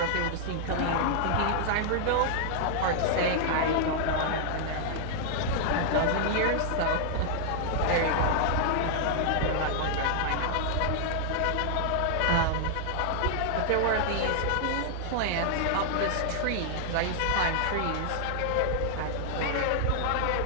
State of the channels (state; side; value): different; both; correlation -0.01